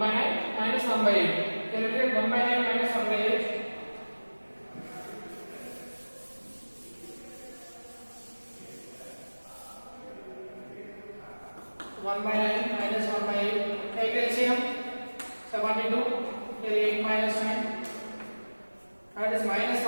9 minus 1 by 8. Calculate 1 by 9 minus 1 by 8. 1 by 9 minus 1 by 8. Take LCM. 72. Here 8 minus 9. That is minus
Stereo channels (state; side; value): inverted; both; correlation -1.00